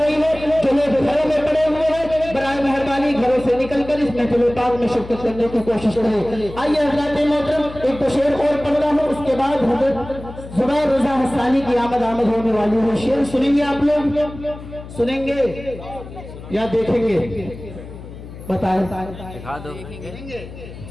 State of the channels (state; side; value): noise; left; hum, 14 dB below the sound